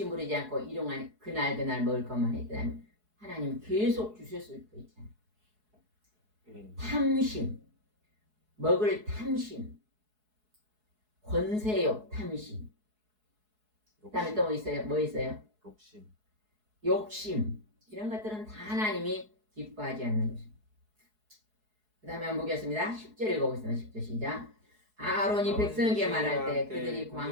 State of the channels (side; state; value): left; late; 4.7 ms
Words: 부리지 않고 일용한 그날 먹을 것만 했더라면 하나님 계속 주실 수도 있잖아요. 탐심, 먹을 탐심, 권세욕 탐심. 그 다음에 또 뭐 있어요? 뭐 있어요? 욕심. 이런 것들은 다 하나님이 기뻐하지 않는 것입니다. 그 다음에 한번 보겠습니다. 10절 읽어보겠습니다. 10절 시작. 아론이 백성에게 말할 때 그들이